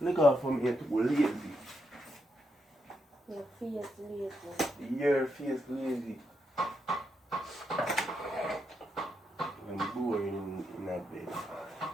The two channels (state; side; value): normal; both; correlation 0.82